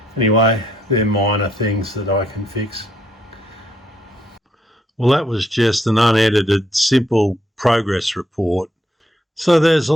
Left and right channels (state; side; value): normal; both; correlation 0.73